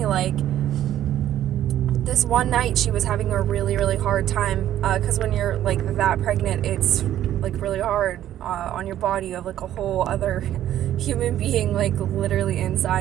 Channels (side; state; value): left; quieter; 12.0 dB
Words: this one night she was having a really, really hard time, because when you're that pregnant, it's really hard on your body. You have a whole other human being literally